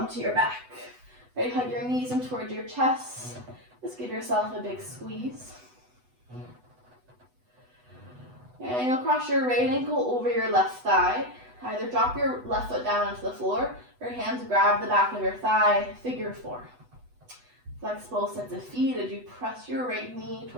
your back. Right, hug your knees in towards your chest. Just give yourself a big squeeze. And you'll cross your right ankle over your left thigh. Either drop your left foot down onto the floor, or your hands grab the back of your thigh, figure four. Flex both sets of feet as you press your right knee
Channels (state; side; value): late; left; 8.0 ms